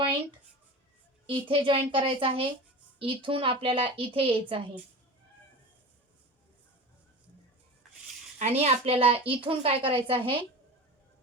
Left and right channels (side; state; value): both; normal; correlation 0.31